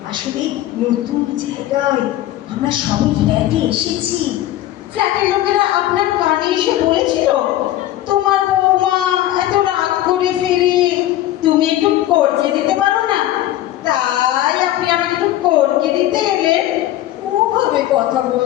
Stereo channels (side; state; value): right; quieter; 14.0 dB